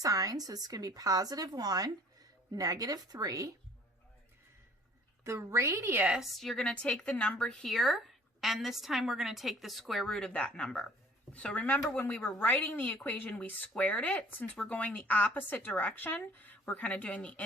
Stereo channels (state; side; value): normal; both; correlation 0.54